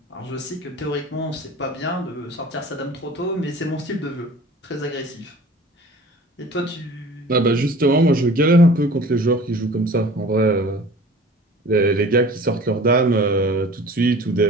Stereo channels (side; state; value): both; normal; correlation 0.44